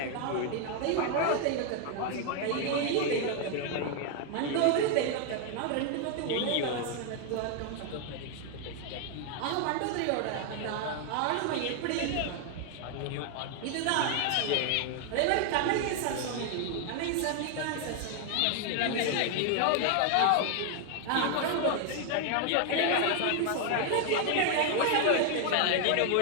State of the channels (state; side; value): different; both; correlation 0.00